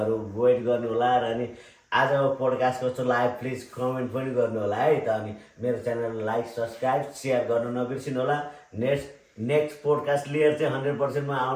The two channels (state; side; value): identical; both; correlation 1.00